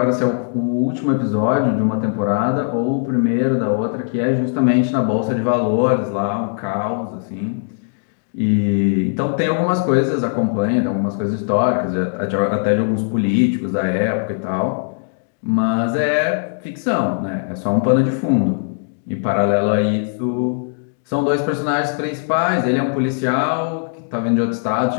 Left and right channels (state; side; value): silent; right; digital silence